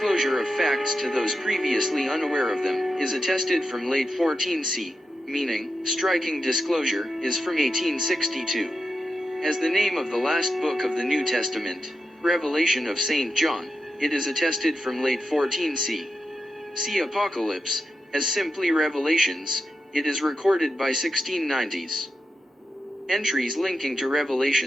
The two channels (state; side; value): normal; both; correlation 0.88